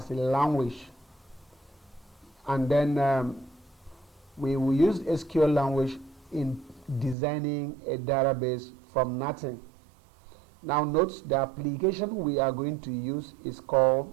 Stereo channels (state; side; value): drops out; left; at 7.2 s